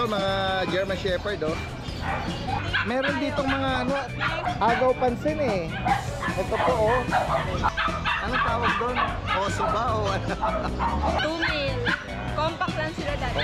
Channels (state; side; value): identical; both; correlation 1.00